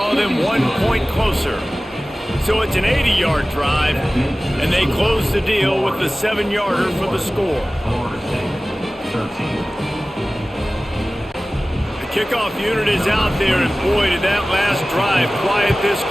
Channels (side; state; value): both; normal; correlation 0.97